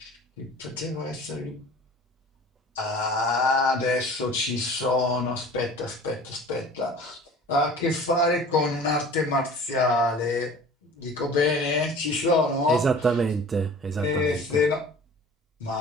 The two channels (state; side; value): normal; both; correlation 0.44